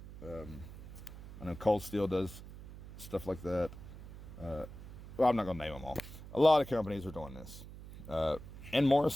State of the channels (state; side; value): noise; right; hum, 14 dB below the sound